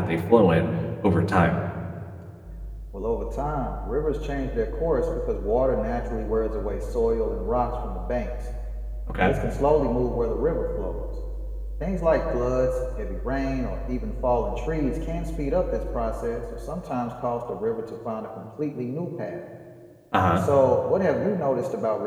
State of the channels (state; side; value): identical; both; correlation 1.00